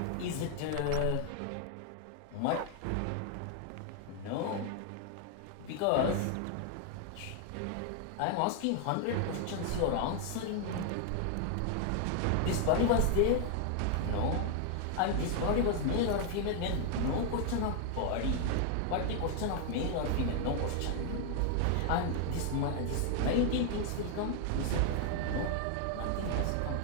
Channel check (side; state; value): both; different; correlation 0.00